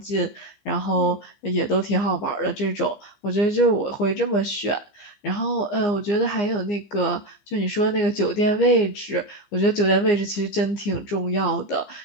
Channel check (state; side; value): late; right; 15 ms